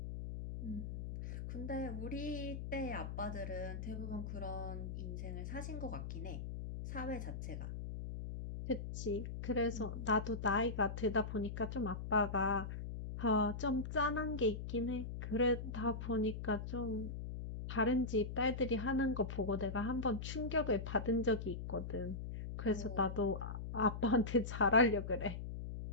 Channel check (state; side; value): noise; left; hum, 6 dB below the sound